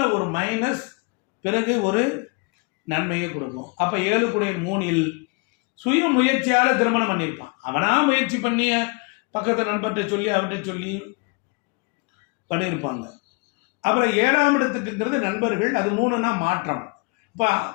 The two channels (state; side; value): quieter; right; 30.3 dB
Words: ஒரு மைனஸ், பிறகு ஒரு நன்மையை கொடுக்கும். அப்ப 7 சுய முயற்சியால திருமணம் பண்ணியிருப்பான். அவனா முயற்சி பண்ணிய பக்கத்தை நண்பர்கிட்ட சொல்லி அவர்கிட்ட சொல்லி பண்ணியிருப்பாங்க. அப்புறம் 7ஆம் இடத்துக்குங்கிறது நண்பர்கள், அது 3னா மாற்றம். இப்ப